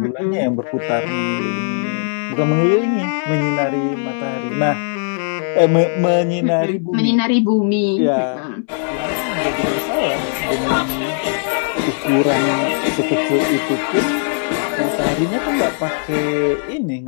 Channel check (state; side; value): silent; right; digital silence